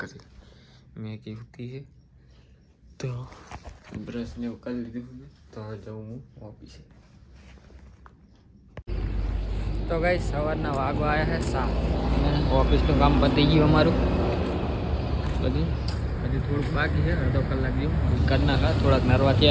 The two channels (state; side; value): identical; both; correlation 1.00